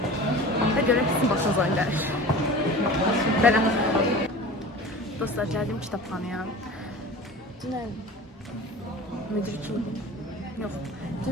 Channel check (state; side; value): normal; both; correlation 0.37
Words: Və görək sizin başınıza gəlir. Belə. Dostlar, gəldim kitabxanaya. Dünən müdürküm. Yox.